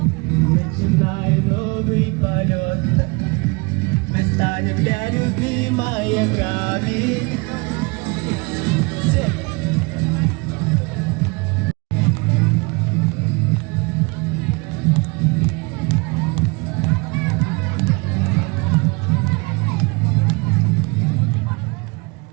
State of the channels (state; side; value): quieter; left; 28.7 dB